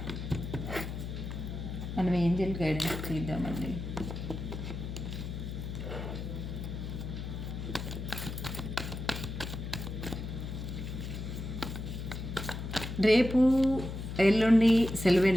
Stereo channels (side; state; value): left; noise; hum, 6 dB below the sound